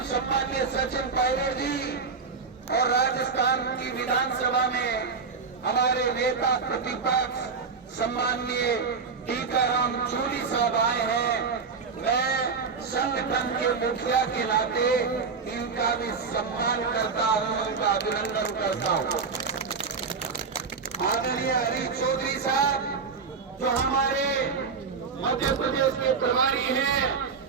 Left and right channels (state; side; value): quieter; left; 5.2 dB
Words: सम्माननीय सचिन पायलट जी और राजस्थान की विधानसभा में हमारे नेता प्रतिपक्ष सम्माननीय टीकाराम जूली साहब आए हैं। मैं संगठन के मुखिया के नाते इनका भी सम्मान करता हूं, उनका अभिनंदन करता हूं। आदरणीय हरीश चौधरी साहब जो हमारे मध्य प्रदेश के प्रभारी हैं,